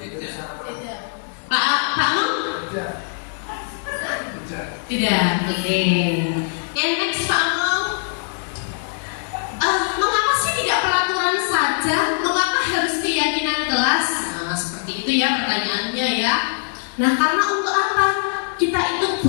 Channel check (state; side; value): silent; right; 65 dB below the other